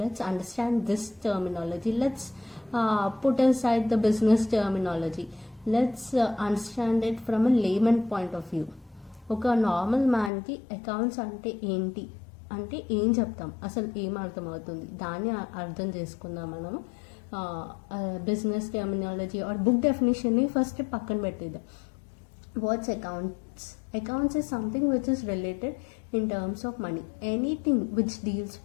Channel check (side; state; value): right; drops out; at 10.3 s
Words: understand this terminology. Let's put aside the business terminology. Let's understand it from a layman point of view. ఒక normal మ్యాన్కి accounts అంటే ఏంటి అంటే ఏం చెప్తాం, అసలు ఏం అర్థమవుతుంది, దాన్ని అర్థం చేసుకుందాం మనము. బిజినెస్ టెర్మినాలజీ ఆర్ బుక్ డెఫినేషన్ని ఫస్ట్ పక్కన పెట్టేద్దాం. What's accounts? Accounts is something which is related in terms of money. Anything which deals